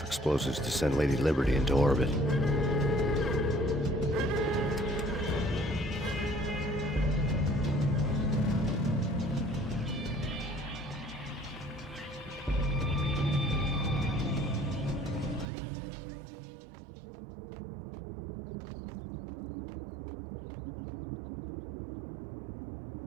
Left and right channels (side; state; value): left; drops out; at 15.5 s